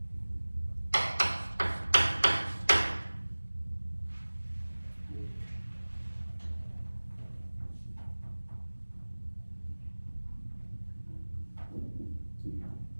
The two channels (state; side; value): inverted; both; correlation -1.00